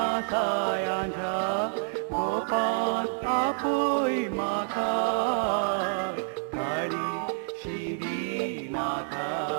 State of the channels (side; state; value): left; silent; digital silence